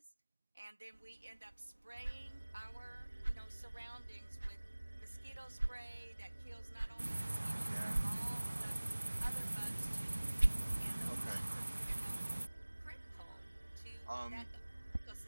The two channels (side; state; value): both; inverted; correlation -1.00